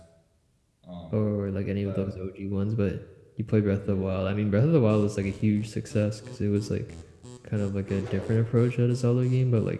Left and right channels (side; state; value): both; identical; correlation 1.00